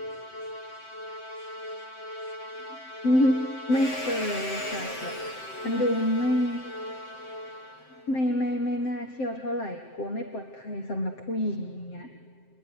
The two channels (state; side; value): late; right; 7.7 ms